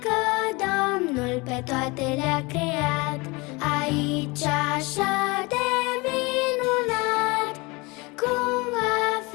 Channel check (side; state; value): right; quieter; 25.6 dB